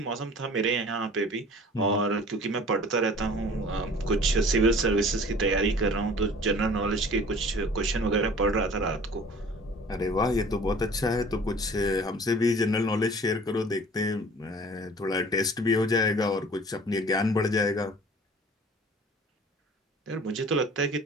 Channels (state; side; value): normal; both; correlation 0.47